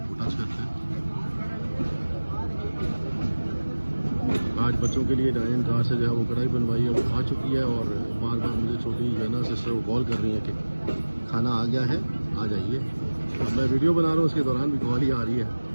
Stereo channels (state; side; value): inverted; both; correlation -1.00